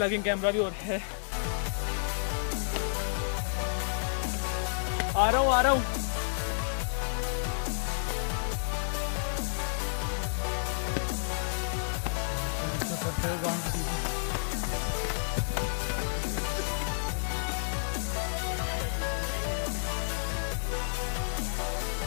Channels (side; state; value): right; silent; digital silence